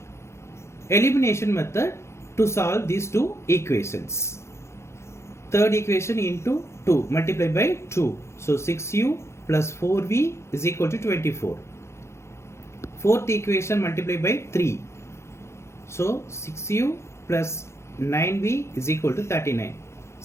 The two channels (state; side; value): late; right; 0.13 ms